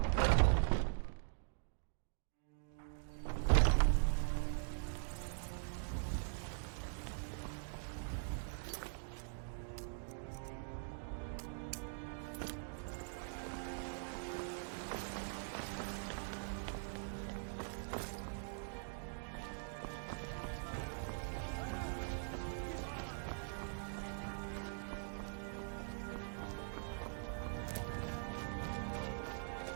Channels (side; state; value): left; silent; digital silence